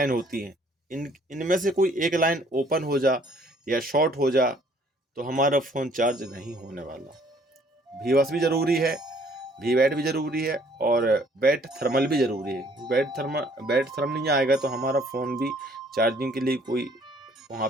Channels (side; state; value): both; normal; correlation 0.60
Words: होती हैं। इनमें से कोई एक लाइन ओपन हो जा या शॉर्ट हो जा तो हमारा फ़ोन चार्ज नहीं होने वाला। V-बस भी ज़रूरी है, V-वैट भी ज़रूरी है, और बैट थर्मल भी ज़रूरी है। बैट थर्मल नहीं आएगा तो हमारा फ़ोन भी चार्जिंग के लिए कोई